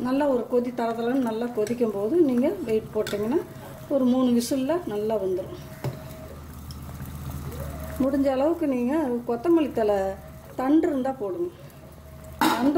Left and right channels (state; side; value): identical; both; correlation 1.00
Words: நல்லா ஒரு கொதி தரத்துலன்னு நல்லா கொதிக்கும் போது நீங்கள் வெயிட் போட்டிங்கன்னா ஒரு 3 விசிலில் நல்லா வந்துடும். முடிஞ்ச அளவுக்கு நீங்கள் கொத்தமல்லி தழை தண்டு இருந்தால் போடுங்க.